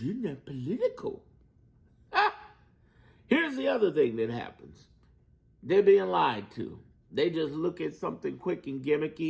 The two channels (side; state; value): both; identical; correlation 1.00